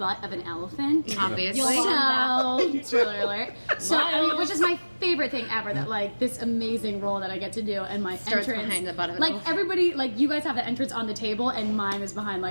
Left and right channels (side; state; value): both; inverted; correlation -1.00